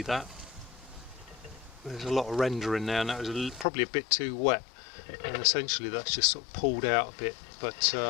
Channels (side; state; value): right; drops out; at 3.7 s